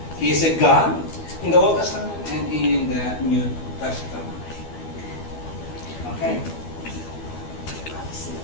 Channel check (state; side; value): late; right; 12 ms